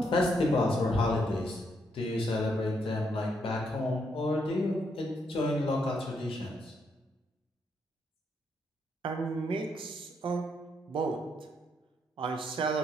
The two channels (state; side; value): normal; both; correlation 0.76